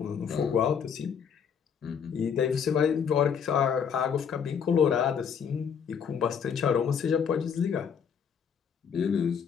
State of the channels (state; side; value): quieter; right; 7.2 dB